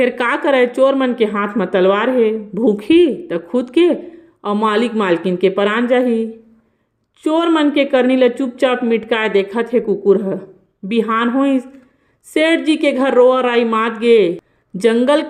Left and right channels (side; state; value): both; identical; correlation 1.00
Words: का करे चोर मन के हाथ में तलवार है, भूखी तो खुद के और मालिक मालकिन के परान जाही। चोर मन के करनी ला चुपचाप मिटकाए देखा थे कुकुर ह। बिहान होइस सेठ जी के घर रोआ राई मात गे। जंगल